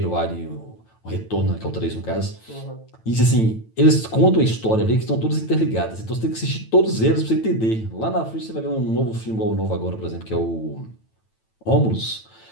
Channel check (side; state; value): right; late; 9.0 ms